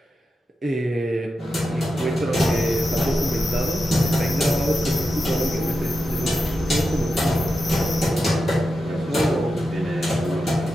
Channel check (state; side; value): normal; both; correlation 0.89